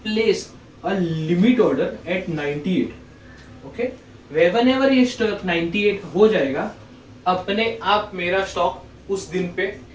place a limit order at 98। Okay, whenever ये स्टॉक 98 हो जाएगा, अपने आप मेरा स्टॉक उस दिन पे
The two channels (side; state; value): both; identical; correlation 1.00